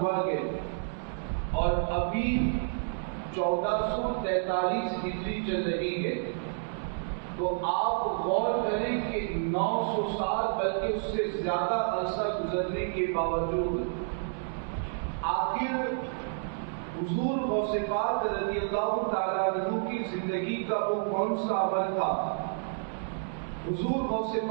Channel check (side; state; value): left; silent; 58 dB below the other